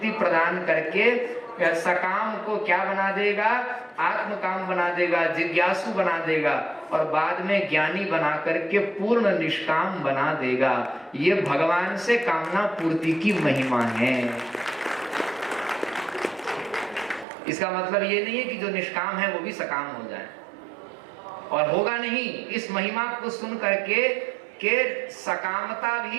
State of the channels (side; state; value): left; drops out; at 17.2 s